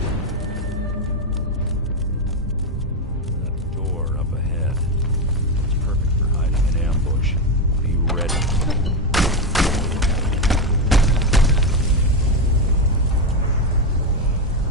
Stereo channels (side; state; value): both; normal; correlation 0.09